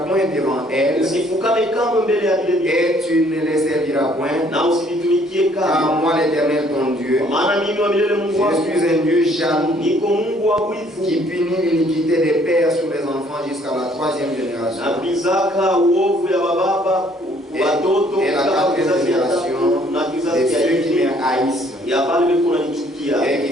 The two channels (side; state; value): both; normal; correlation 0.62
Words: point devant elles, Usifukame kamwe mbele ya vile vitu et tu ne les serviras point, na usivitumikie car kamwe, moi l'Éternel ton Dieu, kwa maana mimi wa milele Mungu wako je suis un Dieu jaloux, niko Mungu wa wivu, qui punit l'iniquité des pères sur les enfants jusqu'à la 3e génération. napizaka uovu ya bababa watoto Et la mpaka 4e kizazi ya tatu génération na de kizazi ya ceux qui me nne haïssent, ya pale biko nanichukia. et